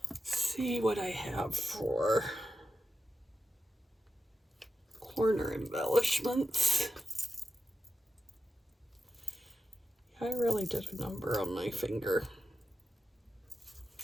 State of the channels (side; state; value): both; normal; correlation 0.90